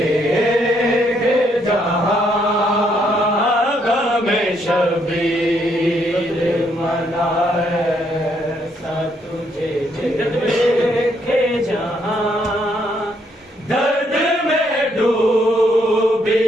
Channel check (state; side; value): normal; both; correlation 0.72